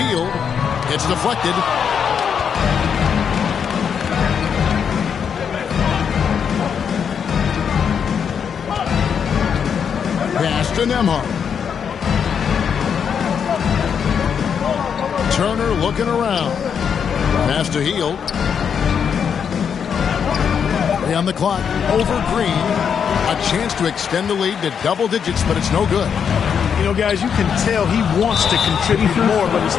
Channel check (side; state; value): right; quieter; 7.3 dB